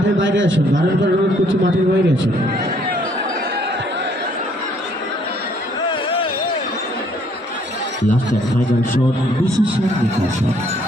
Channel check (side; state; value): both; normal; correlation 0.64